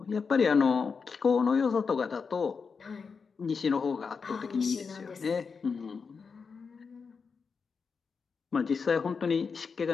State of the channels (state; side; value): quieter; right; 5.3 dB